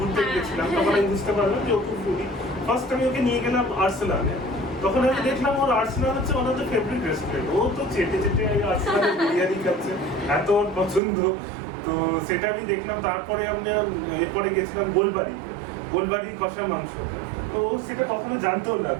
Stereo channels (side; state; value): left; drops out; at 11.0 s